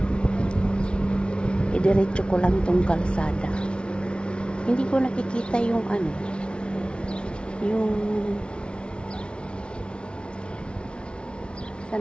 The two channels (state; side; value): late; right; 0.057 ms